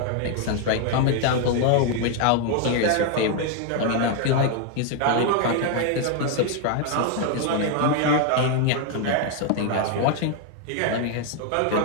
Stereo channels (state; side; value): different; both; correlation 0.01